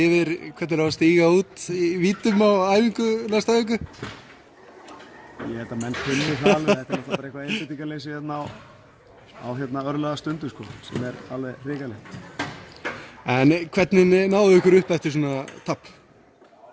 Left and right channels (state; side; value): identical; both; correlation 1.00